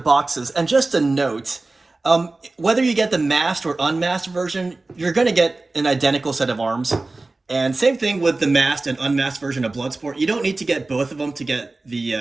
And just a note, whether you get the masked or unmasked version, you're going to get an identical set of arms. And same thing with the masked and unmasked version of Bloodsport. You don't need to get both of them to get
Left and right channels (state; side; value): quieter; left; 3.3 dB